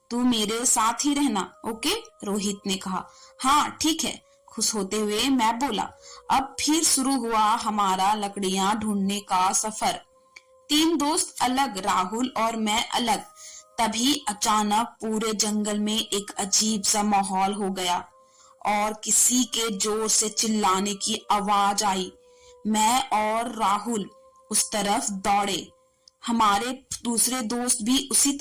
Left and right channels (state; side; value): identical; both; correlation 1.00